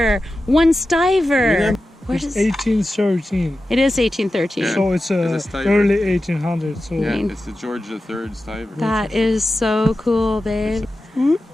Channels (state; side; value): normal; both; correlation 0.93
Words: One stiver. Where's It's it? 1813. It is 1813. Yeah. So it's It's a stiver. early 1800s. So Yeah, mean- it's the George the Third stiver. That is so cool, babe.